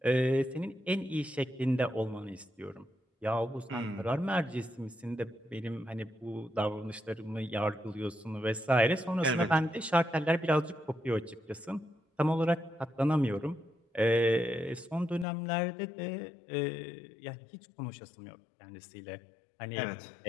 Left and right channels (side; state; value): right; drops out; at 15.2 s